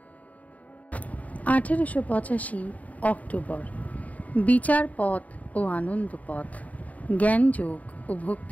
1885 অক্টোবর। বিচার পথ ও আনন্দ পথ, জ্ঞানযোগ ও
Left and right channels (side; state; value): right; late; 0.071 ms